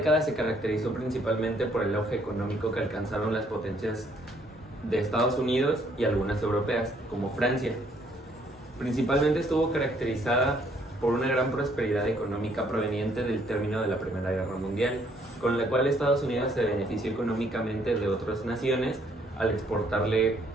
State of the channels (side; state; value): both; normal; correlation 0.66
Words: se caracterizó principalmente por el auge económico que alcanzaron las potencias de Estados Unidos y algunas europeas, como Francia. Principalmente estuvo caracterizada por una gran prosperidad económica proveniente del término de la Primera Guerra Mundial, con la cual Estados Unidos se benefició económicamente de otras naciones al exportarle